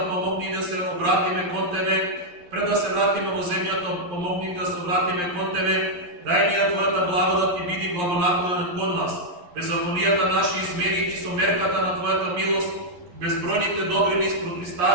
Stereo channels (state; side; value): late; left; 11 ms